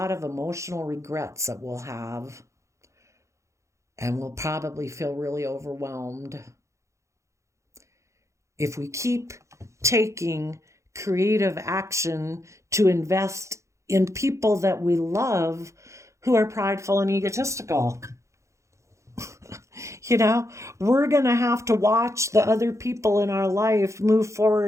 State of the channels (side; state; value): left; late; 0.14 ms